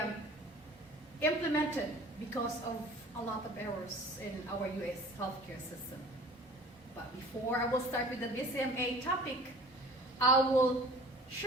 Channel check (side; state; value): both; normal; correlation 0.46